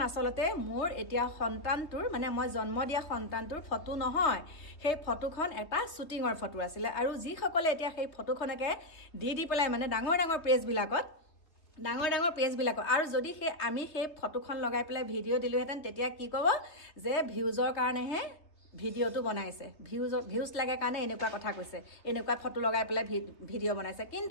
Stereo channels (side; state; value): right; late; 3.0 ms